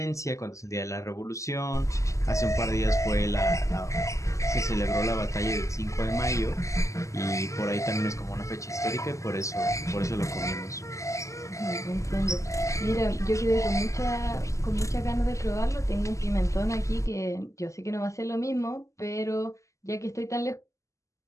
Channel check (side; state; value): right; late; 0.15 ms